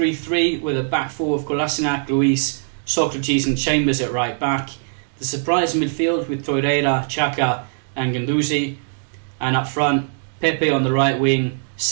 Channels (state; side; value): silent; left; digital silence